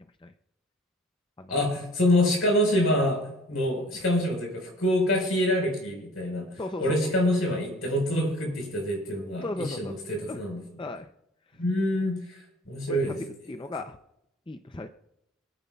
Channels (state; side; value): normal; both; correlation 0.49